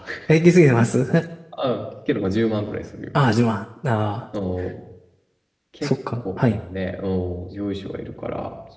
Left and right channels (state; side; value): identical; both; correlation 1.00